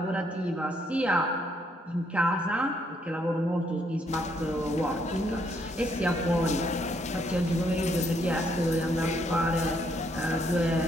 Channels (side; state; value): both; normal; correlation 0.72